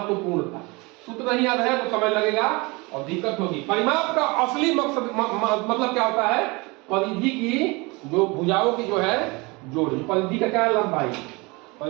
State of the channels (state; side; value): quieter; left; 25.8 dB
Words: था। सूत्र नहीं याद है तो समय लगेगा और दिक्कत होगी। परिमाप का असली मकसद मतलब क्या होता है, परिधि की जो भुजाओं की जो है जोड़, परिधि का क्या है, लंबाई,